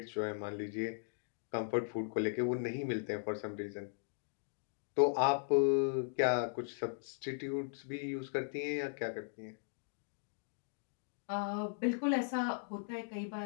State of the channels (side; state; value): right; silent; digital silence